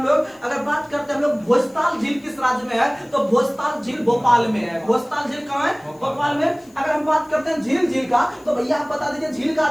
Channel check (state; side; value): noise; left; hiss, 29 dB below the sound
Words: लोग भोजताल झील किस राज्य में है, तो भोजताल झील भोपाल में है। भोजताल झील कहां है? भोपाल में। अगर हम बात करते हैं झील का, तो भैया आप बता दीजिए झील का